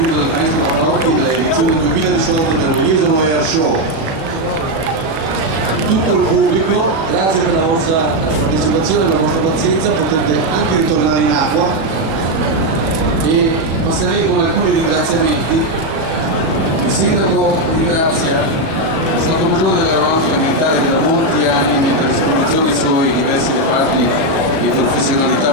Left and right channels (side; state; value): left; late; 37 ms